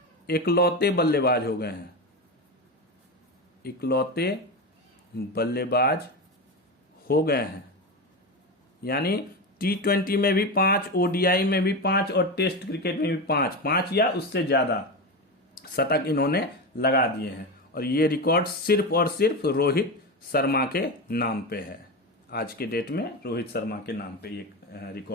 इकलौते बल्लेबाज हो गए हैं। यानी टी20 में भी 5, ओडीआई में भी 5 और टेस्ट क्रिकेट में भी 5 या उससे ज्यादा शतक इन्होंने लगा दिए हैं। और ये रिकॉर्ड सिर्फ और सिर्फ रोहित शर्मा के नाम पे है। आज के डेट में रोहित शर्मा के नाम पे ये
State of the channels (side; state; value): both; normal; correlation 0.18